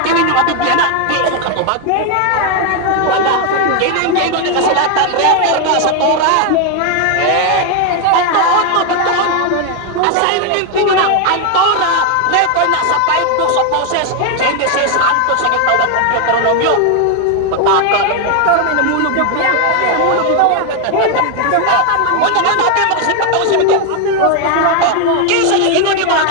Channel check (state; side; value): different; both; correlation 0.01